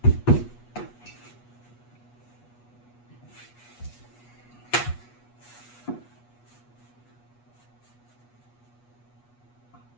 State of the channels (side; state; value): right; late; 8.3 ms